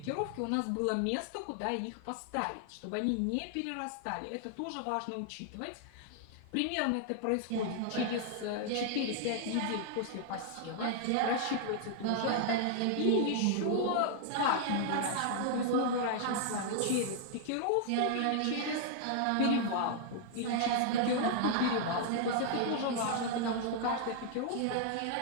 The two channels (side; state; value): both; different; correlation 0.00